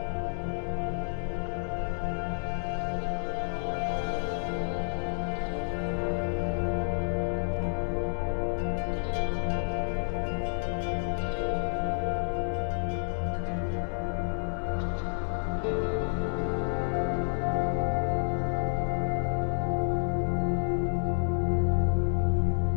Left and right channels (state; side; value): silent; right; digital silence